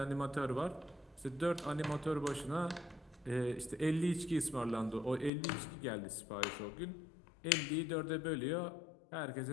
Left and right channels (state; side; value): drops out; right; at 5.3 s